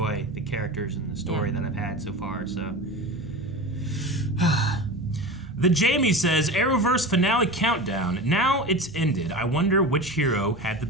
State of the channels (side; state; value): both; normal; correlation 0.30